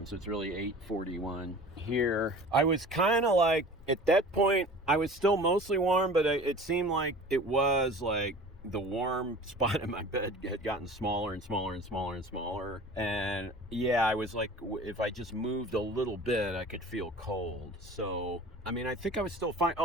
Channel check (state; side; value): normal; both; correlation 0.41